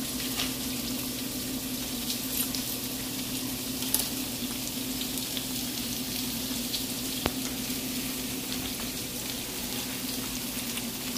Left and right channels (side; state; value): both; identical; correlation 1.00